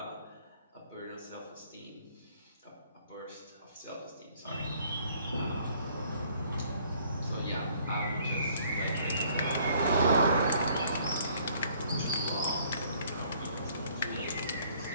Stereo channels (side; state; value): both; inverted; correlation -0.61